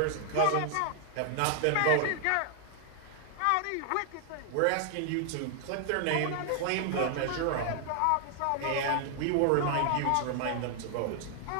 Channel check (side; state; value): both; different; correlation 0.00